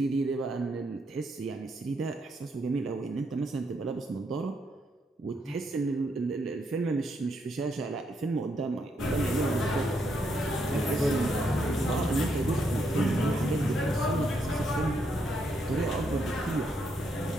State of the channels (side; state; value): both; normal; correlation 0.77